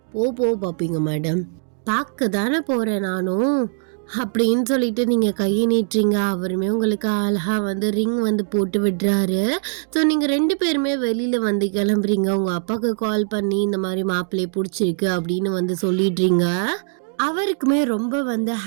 போ பாப்பீங்க மேடம். பார்க்க தானே போறேன் நானும் அப்படின்னு சொல்லிட்டு நீங்க கையை நீட்டுறீங்க. அவருமே உங்களுக்கு அழகா வந்து ரிங் வந்து போட்டு விடுறாரு. ஸோ நீங்க 2 பேருமே வெளியில வந்து கிளம்புறீங்க. உங்க அப்பாவுக்கு கால் பண்ணி இந்த மாதிரி மாப்பிள்ளையை பிடிச்சிருக்கு அப்படின்னு வந்து சொல்லிடுறீங்க. அவருக்குமே ரொம்ப வந்து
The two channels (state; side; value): silent; left; digital silence